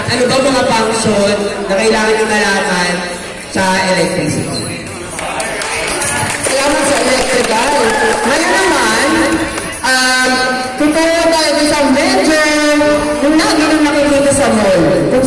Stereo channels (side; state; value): both; identical; correlation 1.00